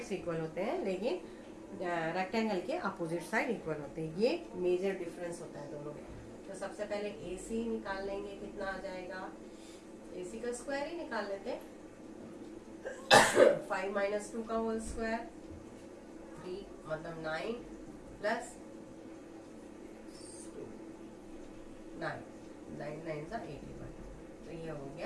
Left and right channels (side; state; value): both; identical; correlation 1.00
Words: इक्वल होते हैं लेकिन रेक्टेंगल के अपोजिट साइड इक्वल होते हैं। ये मेजर डिफरेंस होता है दोनों में। तो सबसे पहले AC निकाल लेंगे, कितना आ जाएगा? AC का स्क्वायर ही निकाल लेते हैं। 5 माइनस 2 का होल स्क्वायर 3, मतलब 9 प्लस 2, 9 9 सा 81। तो ये हो